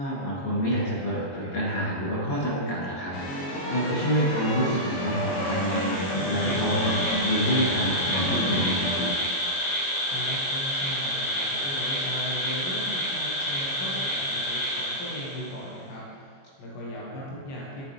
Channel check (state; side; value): late; right; 22 ms